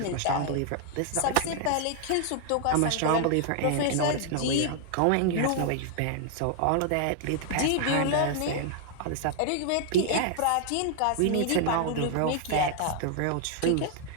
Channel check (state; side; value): different; both; correlation 0.00